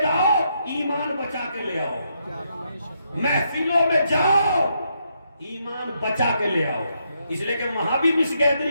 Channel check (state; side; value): inverted; both; correlation -0.78